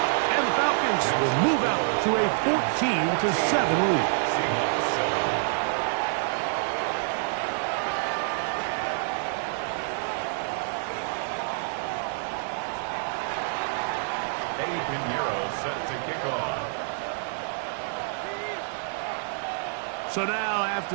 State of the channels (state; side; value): silent; left; 60 dB below the other